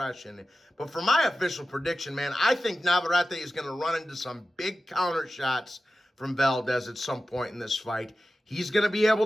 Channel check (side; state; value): both; normal; correlation 0.94